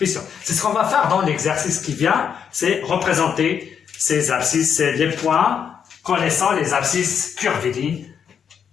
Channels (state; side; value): quieter; right; 7.6 dB